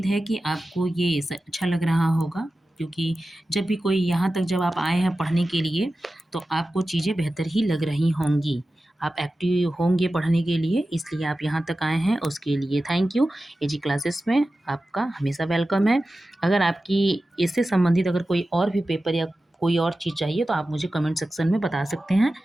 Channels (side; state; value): both; normal; correlation 0.94